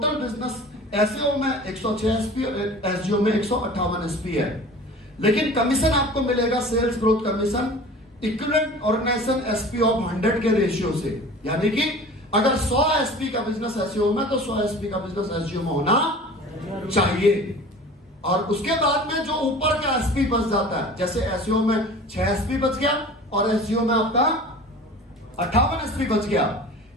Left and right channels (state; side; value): normal; both; correlation 0.41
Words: बिजनेस एसईओ में 106 एसपी, एसजीओ में 158 एसपी है, लेकिन कमीशन आपको मिलेगा sales growth commission equivalent organisation SP of 100 के रेशियो से। यानी कि अगर 100 एसपी का बिजनेस एसईओ में तो 100 एसपी का बिजनेस एसजीओ में होना चाहिए। और उसके बाद में जो ऊपर का एसपी बच जाता है, जैसे एसईओ में 6 एसपी बच गया और एसजीओ में आपका 58 एसपी बच गया,